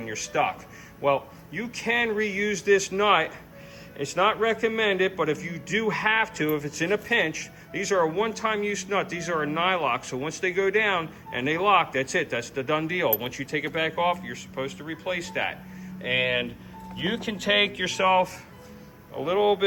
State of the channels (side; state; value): both; identical; correlation 1.00